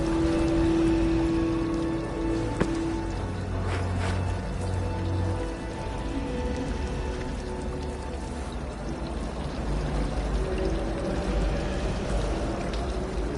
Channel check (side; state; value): both; identical; correlation 1.00